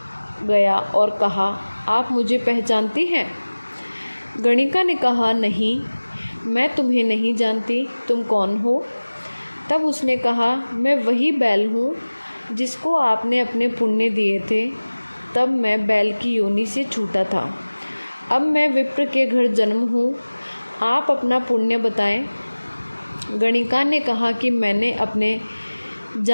गया और कहा, आप मुझे पहचानती हैं? गणिका ने कहा, नहीं, मैं तुम्हें नहीं जानती, तुम कौन हो? तब उसने कहा, मैं वही बैल हूँ जिसको आपने अपने पुण्य दिए थे। तब मैं बैल की योनि से छूटा था। अब मैं विप्र के घर जन्म हूँ। आप अपना पुण्य बताएं। गणिका ने कहा कि मैंने अपने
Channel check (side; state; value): both; inverted; correlation -1.00